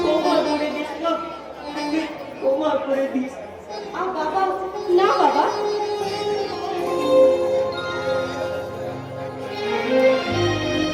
বাবা, না বাবা,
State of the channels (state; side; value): identical; both; correlation 1.00